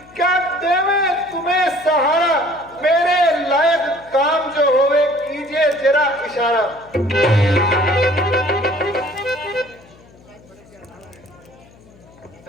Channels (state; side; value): noise; left; hum, 25 dB below the sound